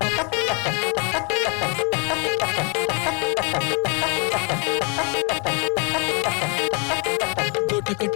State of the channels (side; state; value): right; quieter; 34.8 dB